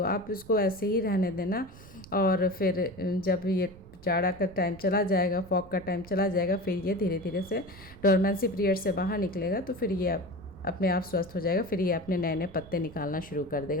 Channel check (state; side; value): noise; right; rumble, 20 dB below the sound